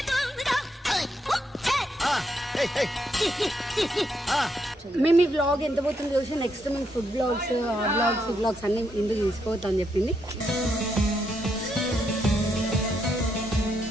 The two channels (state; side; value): normal; both; correlation 0.78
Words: మేము ఈ వ్లాగ్ ఎంత పోతుంది చూసి నెక్స్ట్ మేము ఫుడ్ బ్లాగ్స్ వ్లాగ్స్ అన్ని ఇందుకు తీసుకోవద్దు అని చెప్పింది.